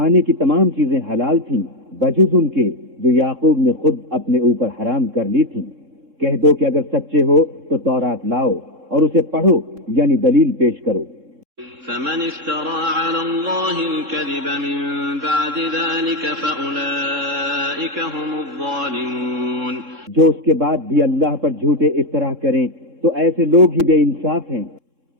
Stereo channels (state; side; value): late; left; 3.7 ms